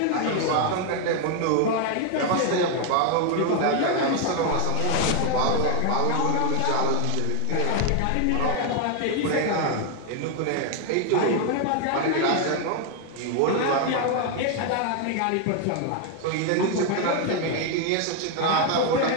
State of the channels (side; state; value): both; different; correlation 0.01